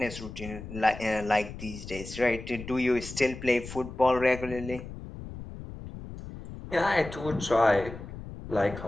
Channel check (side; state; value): left; noise; rumble, 12 dB below the sound